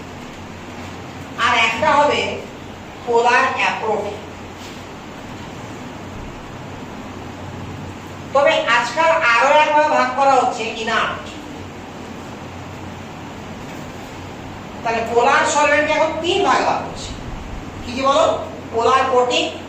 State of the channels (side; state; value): both; identical; correlation 1.00